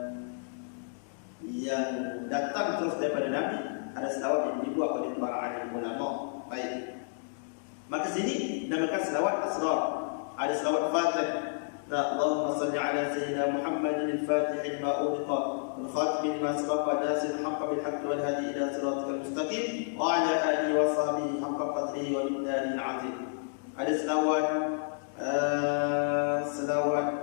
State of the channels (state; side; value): silent; right; digital silence